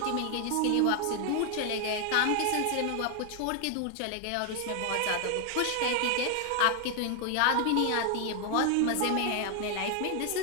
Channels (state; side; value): different; both; correlation 0.00